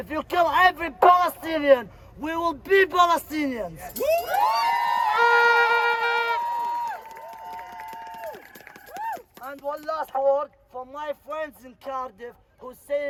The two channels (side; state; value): both; identical; correlation 1.00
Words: you kill every Palestinian, we will be Palestinians. And one last word for my friends in Cardiff who's